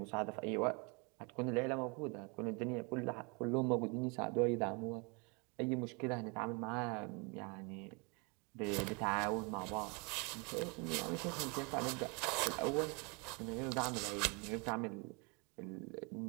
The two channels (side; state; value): left; quieter; 31.8 dB